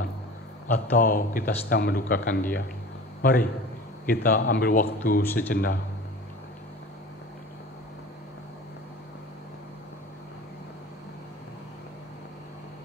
atau kita sedang mendukakan Dia? Mari kita ambil waktu sejenak.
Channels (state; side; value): normal; both; correlation 0.39